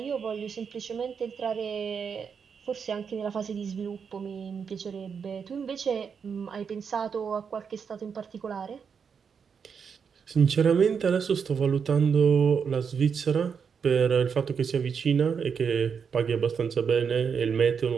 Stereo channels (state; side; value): quieter; left; 6.5 dB